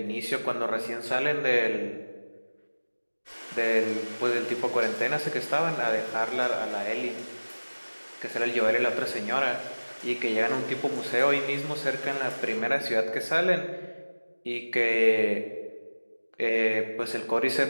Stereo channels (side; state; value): both; inverted; correlation -1.00